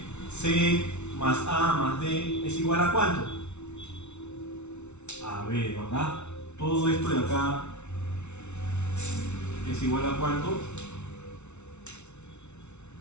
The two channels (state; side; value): late; right; 0.82 ms